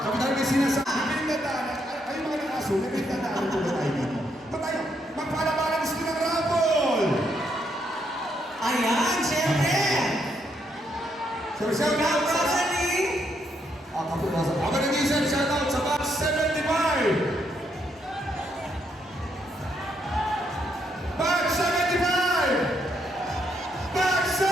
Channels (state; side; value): normal; both; correlation 0.76